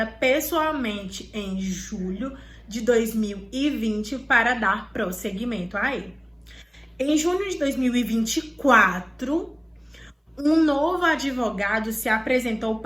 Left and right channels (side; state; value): both; identical; correlation 1.00